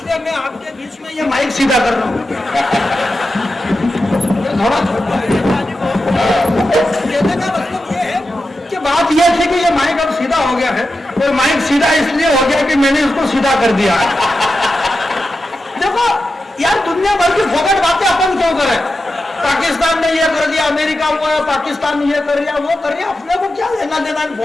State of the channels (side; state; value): both; normal; correlation 0.91